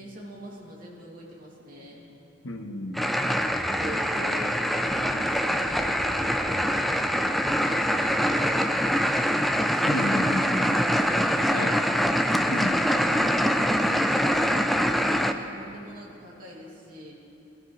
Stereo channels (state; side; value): normal; both; correlation 0.84